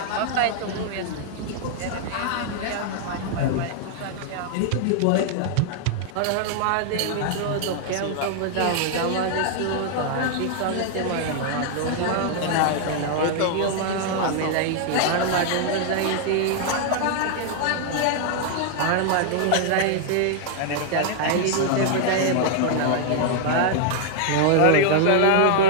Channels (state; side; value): different; both; correlation 0.00